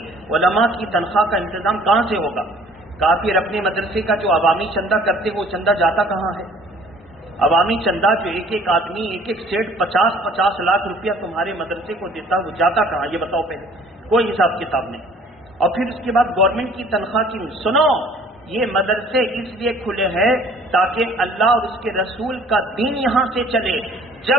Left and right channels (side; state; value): both; normal; correlation 0.54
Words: علماء کی تنخواہ کا انتظام کہاں سے ہوگا؟ کہا پھر اپنے مدرسے کا جو عوامی چندہ کرتے وہ چندہ جاتا کہاں ہے؟ عوامی چندہ جو ایک آدمی ایک سیٹ 50 لاکھ روپیہ تمہارے مدرسے کو دیتا وہ جاتا کہاں؟ یہ بتاؤ پہلے، کوئی حساب کتاب نہیں۔ اور پھر اس کے بعد گورنمنٹ کی تنخواہ کی سنو، یہ مدرسے اس لیے کھلے ہیں تاکہ اللہ اور اس کے رسول کا دین یہاں سے چلے۔